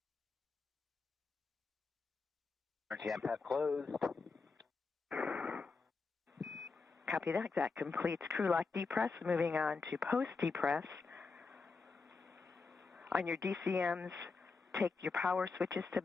Emergency MPEV closed. Copy that. That completes crew lock depress. Moving on to post depress. On your DCMs, take your power switches to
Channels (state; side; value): quieter; right; 4.4 dB